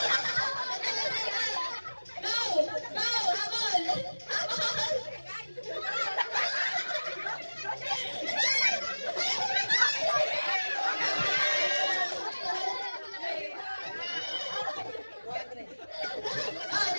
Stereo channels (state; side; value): inverted; both; correlation -1.00